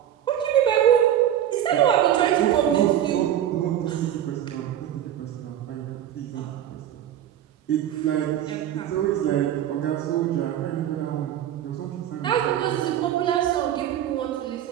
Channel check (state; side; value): quieter; left; 10.9 dB